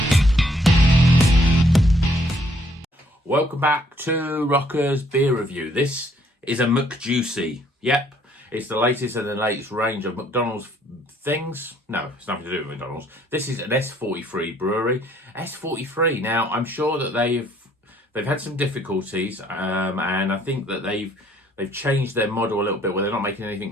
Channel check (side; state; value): both; normal; correlation 0.65